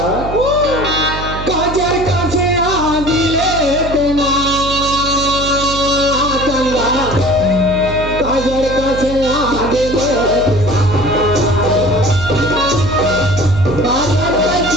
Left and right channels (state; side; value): noise; right; hum, 8 dB below the sound